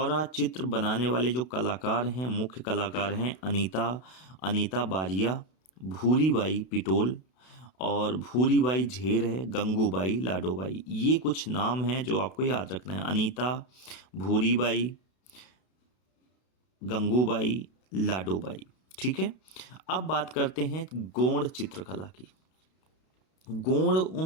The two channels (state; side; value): late; right; 32 ms